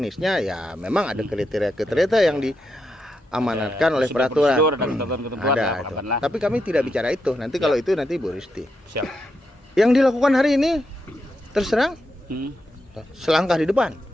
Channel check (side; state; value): both; normal; correlation 0.84